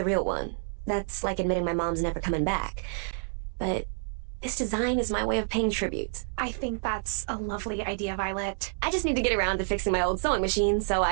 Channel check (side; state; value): left; silent; 59 dB below the other